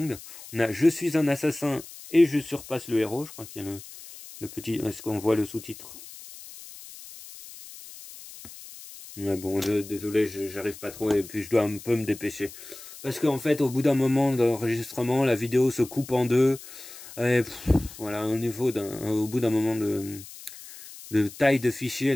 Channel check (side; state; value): left; noise; hiss, 16 dB below the sound